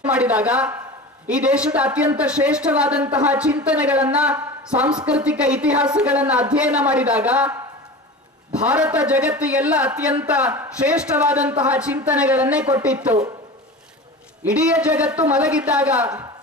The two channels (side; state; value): both; normal; correlation 0.32